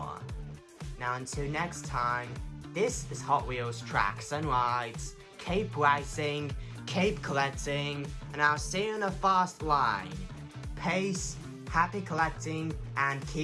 Now until next time, this is Hot Wheels Tracks and Rides. Keep racing, keep collecting, and I'll see you in the fast line. Peace, happy collecting, and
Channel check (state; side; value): identical; both; correlation 1.00